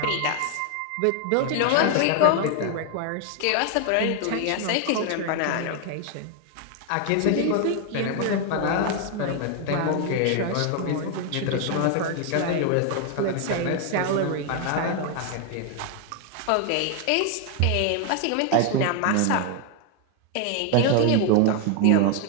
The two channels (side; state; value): both; different; correlation 0.01